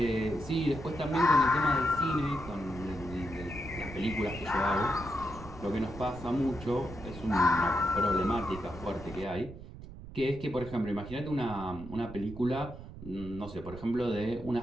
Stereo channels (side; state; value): right; noise; rumble, 14 dB below the sound